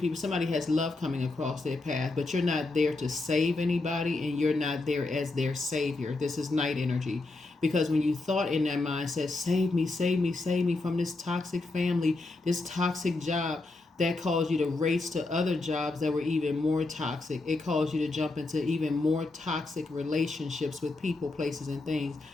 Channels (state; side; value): quieter; right; 3.2 dB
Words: somebody has love coming across their path, but you're not there to save anybody and you're not there as their savior. This is Knight energy. Because when you thought in that mindset, save me, save me, save me from this toxic family, this toxic job, that caused you to race to other jobs that were even more toxic. It caused you to jump into even more toxic relationships with people, places, and things.